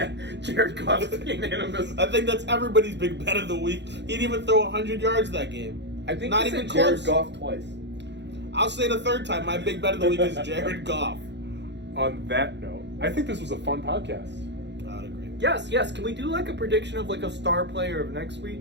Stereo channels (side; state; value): left; late; 0.51 ms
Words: Jared Goff's unanimous. I think that's everybody's big bet of the week. He didn't even throw 100 yards that game. I think Not you even said Jared close. Goff twice. I'll say the third time. My big bet of the week is Jared Goff. On that note, I think this was a fun podcast. I would agree. Yes. Can we do like a prediction of like a star player of next week?